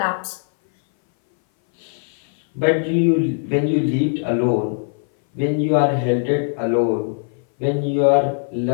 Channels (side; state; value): right; silent; 60 dB below the other